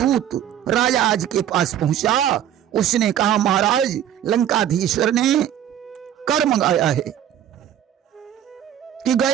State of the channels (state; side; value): quieter; left; 10.6 dB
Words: राजा आज के पास पहुंचा, उसने कहा महाराज लंकाधीश्वर ने कर मंगाया है कि